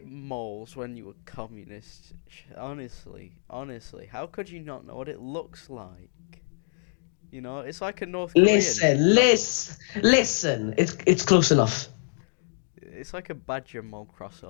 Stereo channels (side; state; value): right; silent; digital silence